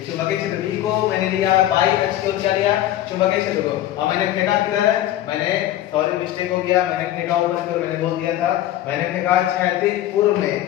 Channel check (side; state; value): right; quieter; 13.3 dB